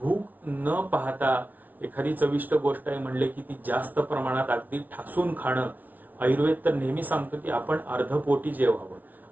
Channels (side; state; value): left; late; 0.080 ms